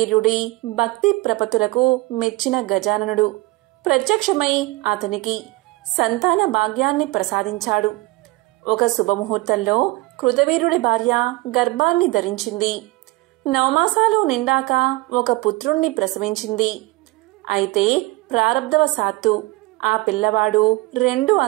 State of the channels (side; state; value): left; quieter; 20.8 dB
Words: భక్తి ప్రపత్తులకు మెచ్చిన గజాననుడు ప్రత్యక్షమై అతనికి సంతాన భాగ్యాన్ని ప్రసాదించాడు. ఒక శుభముహూర్తంలో కృతవీర్యుడి భార్య గర్భాన్ని ధరించింది. 9 మాసాలు నిండాక ఒక పుత్రుణ్ణి ప్రసవించింది. అయితే ప్రారబ్ధవశాత్తు ఆ పిల్లవాడు 2